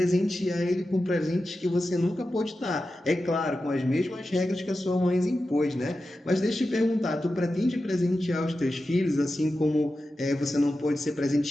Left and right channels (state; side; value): normal; both; correlation 0.92